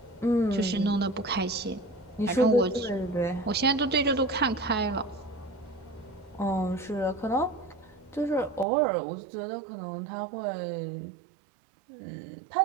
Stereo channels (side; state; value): left; drops out; at 8.7 s